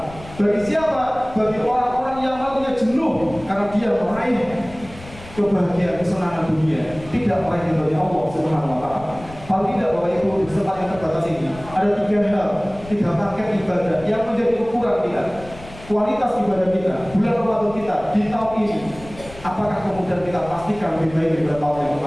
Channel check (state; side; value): noise; left; rumble, 17 dB below the sound